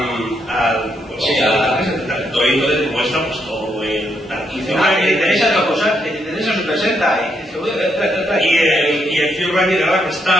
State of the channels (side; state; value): both; normal; correlation 0.78